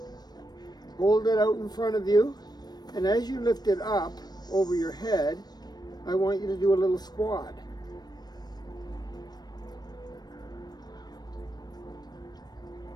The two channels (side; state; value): right; late; 0.19 ms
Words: Hold it out in front of you, and as you lift it up over your head, I want you to do a little squat.